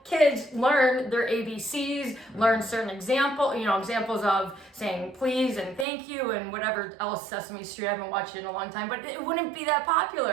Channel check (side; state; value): left; drops out; at 5.9 s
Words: kids learn their ABCs, learn certain examples of saying please and thank you and whatever else. Sesame Street, I haven't watched it in a long time, but it wouldn't be that